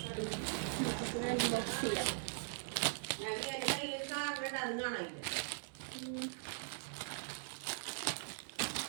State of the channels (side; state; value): left; silent; digital silence